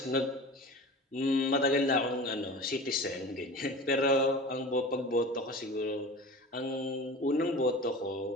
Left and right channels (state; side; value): normal; both; correlation 0.35